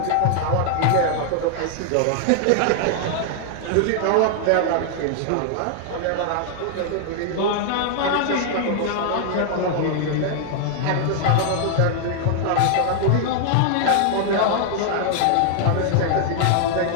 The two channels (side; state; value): both; different; correlation 0.00